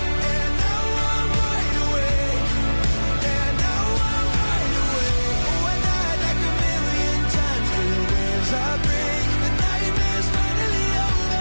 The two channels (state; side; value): inverted; both; correlation -1.00